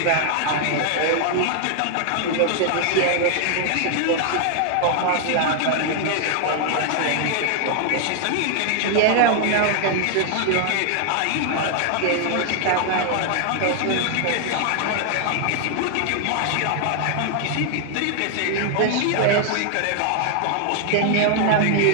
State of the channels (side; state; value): both; different; correlation 0.00